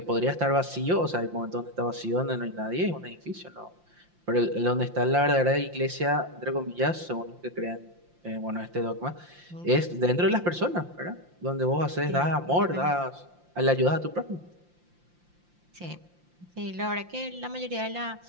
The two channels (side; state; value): left; late; 5.7 ms